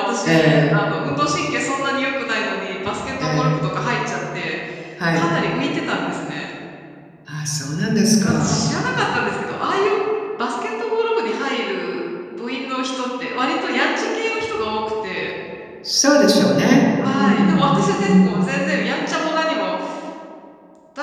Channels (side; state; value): both; identical; correlation 1.00